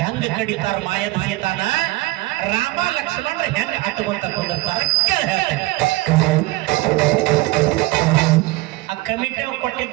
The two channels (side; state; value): left; quieter; 20.3 dB